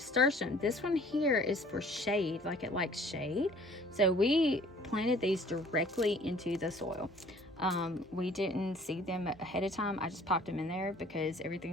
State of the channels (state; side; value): normal; both; correlation 0.54